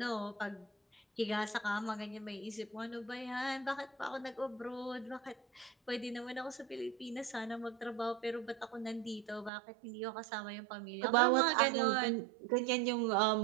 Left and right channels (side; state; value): left; drops out; at 9.5 s